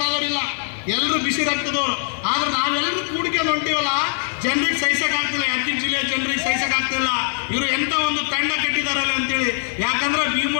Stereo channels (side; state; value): right; silent; digital silence